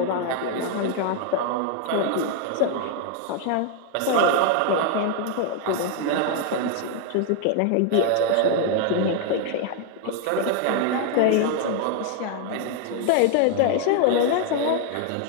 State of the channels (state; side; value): different; both; correlation 0.00